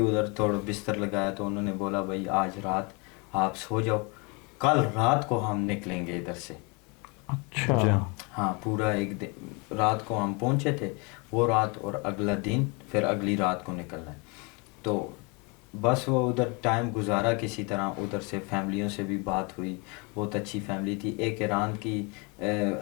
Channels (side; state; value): right; quieter; 30.7 dB